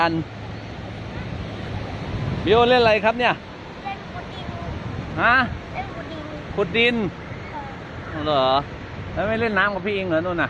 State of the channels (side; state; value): both; identical; correlation 1.00